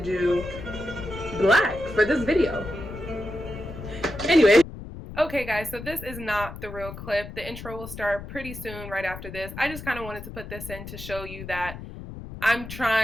do black for this video. Anyway. Okay guys, so this is not the real clip. The intro will start pretty soon right after this. I just kind of wanted to put this in to show you that I'm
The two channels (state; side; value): noise; left; rumble, 11 dB below the sound